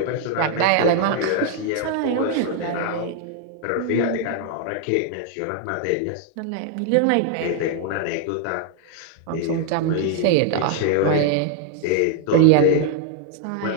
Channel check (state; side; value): different; both; correlation 0.00